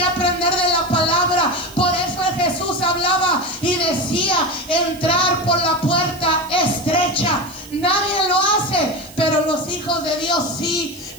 aprender de la palabra. Por eso Jesús hablaba y decía: entrar por la puerta estrecha. Nadie lo hace, pero los hijos de Dios sí.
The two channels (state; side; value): noise; right; hiss, 20 dB below the sound